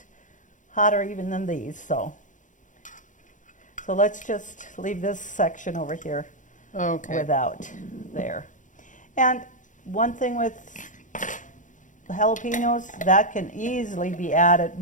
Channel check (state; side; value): late; right; 0.37 ms